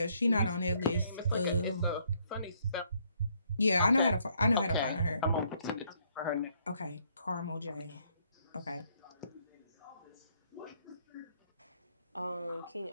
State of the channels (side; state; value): both; inverted; correlation -0.69